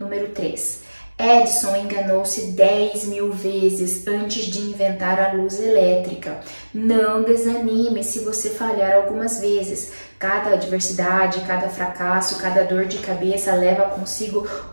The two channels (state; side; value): inverted; both; correlation -1.00